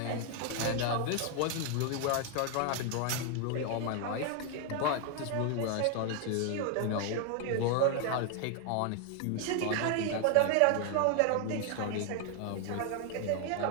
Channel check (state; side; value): different; both; correlation 0.01